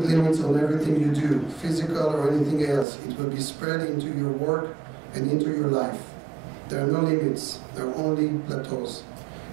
on everything you do, physical or anything else, it will be spread into your work and into your life. There are no limits, there are only plateaus.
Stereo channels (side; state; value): left; drops out; at 2.9 s